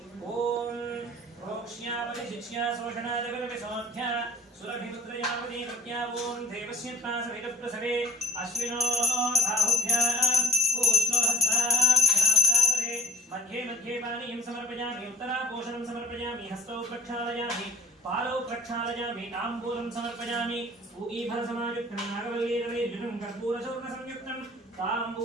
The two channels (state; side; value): normal; both; correlation 0.51